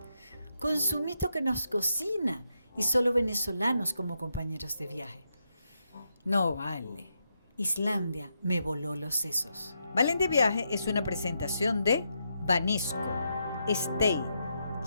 con Sumito que nos cocina y solo venezolanos como compañeros de viaje. No vale, Islandia me voló los sesos. Valen de Viaje es una presentación de Banesco, Stay,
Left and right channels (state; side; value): inverted; both; correlation -0.82